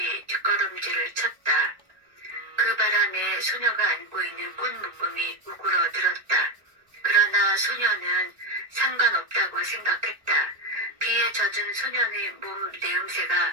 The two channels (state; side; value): late; left; 1.9 ms